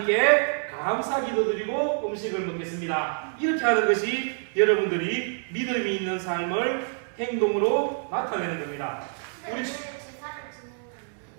감사 기도드리고 음식을 먹겠습니다. 이렇게 하는 것이 여러분들이 믿음이 있는 삶을 행동으로 나타내는 겁니다. 우리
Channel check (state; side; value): silent; left; digital silence